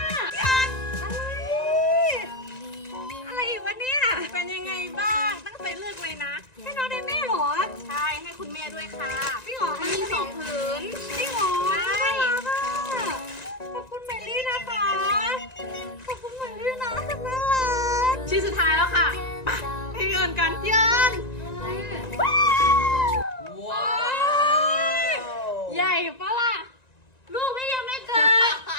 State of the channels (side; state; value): right; late; 1.9 ms